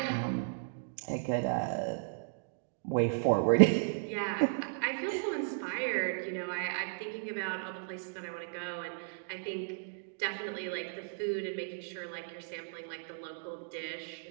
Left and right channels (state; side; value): silent; left; digital silence